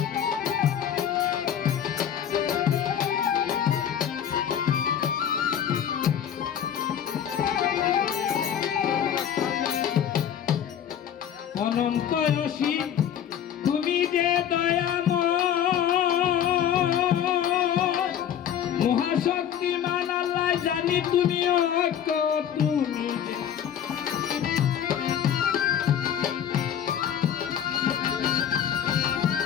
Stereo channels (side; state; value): right; quieter; 9.4 dB